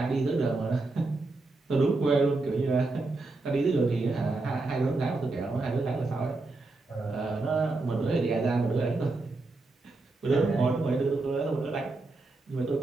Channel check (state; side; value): quieter; left; 3.3 dB